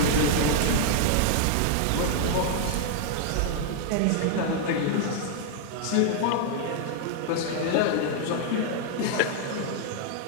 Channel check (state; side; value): different; both; correlation 0.00